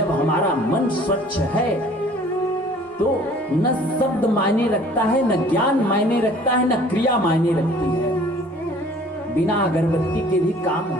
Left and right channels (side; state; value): both; normal; correlation 0.52